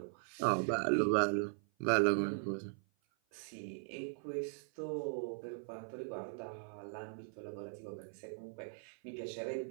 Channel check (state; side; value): silent; left; 51 dB below the other